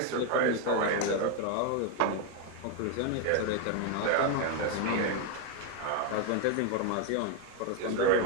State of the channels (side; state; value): both; different; correlation 0.01